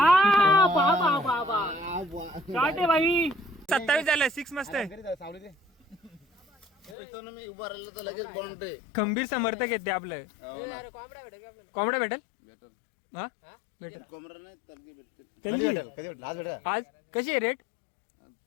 27 झालं 6 मस्त आहे. मी उभा राहिलो तर लगेच बॉन्ड खंबीर समर्थक आहेत ते आपलं. कोंबडा भेटेल हा भेटेल कोंबडा नाही तलगी भेटते तलगी आज भेटा आज कशी आहे रेट.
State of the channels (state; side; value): drops out; right; at 7.0 s